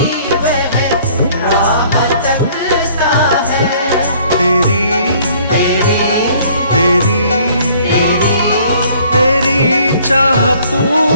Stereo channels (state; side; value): inverted; both; correlation -0.58